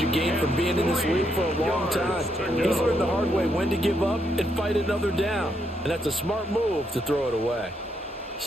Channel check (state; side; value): normal; both; correlation 0.77